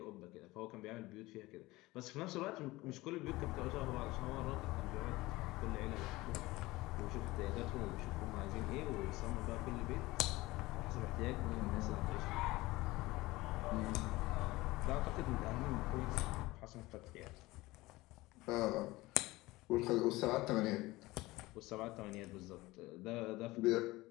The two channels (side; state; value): right; quieter; 19.9 dB